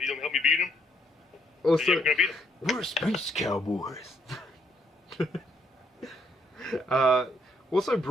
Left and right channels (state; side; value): normal; both; correlation 0.71